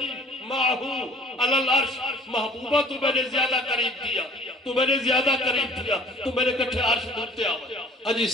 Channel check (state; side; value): normal; both; correlation 0.51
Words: معہو علی العرش محبوبہ تو میں نے زیادہ قریب دیا تو میں نے زیادہ قریب دیا تو میرے کٹھے عرش دھوتے آئے اجی